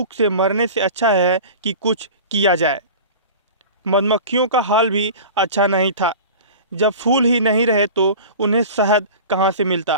से मरने से अच्छा है कि कुछ किया जाए। मधुमक्खियों का हाल भी अच्छा नहीं था। जब फूल ही नहीं रहे तो उन्हें शहद कहाँ से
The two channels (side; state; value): both; inverted; correlation -0.36